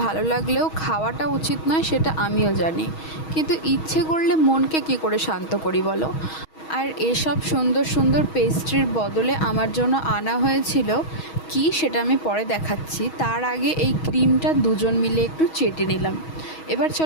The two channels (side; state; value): right; late; 6.3 ms